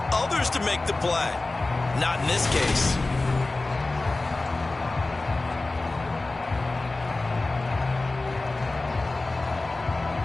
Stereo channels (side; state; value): right; quieter; 3.2 dB